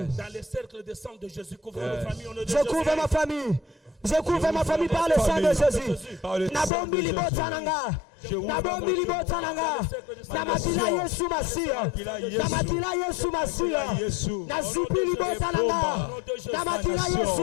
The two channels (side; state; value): right; drops out; at 6.7 s